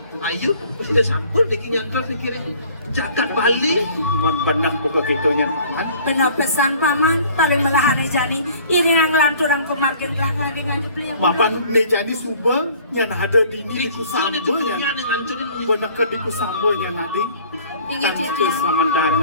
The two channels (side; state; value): both; inverted; correlation -0.52